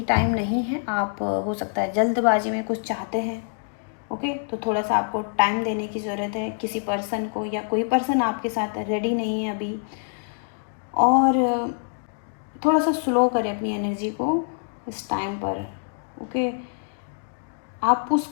टाइम नहीं है। आप हो सकता है जल्दबाजी में कुछ चाहते हैं। ओके, तो थोड़ा सा आपको टाइम देने की ज़रूरत है किसी पर्सन को, या कोई पर्सन आपके साथ रेडी नहीं है अभी। और थोड़ा सा स्लो करें अपनी एनर्जी को इस टाइम पर। ओके, आप पुश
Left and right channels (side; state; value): right; silent; digital silence